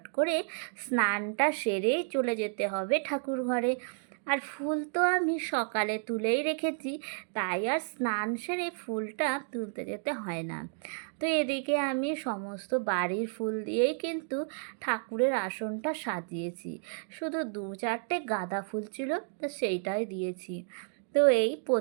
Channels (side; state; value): left; silent; 57 dB below the other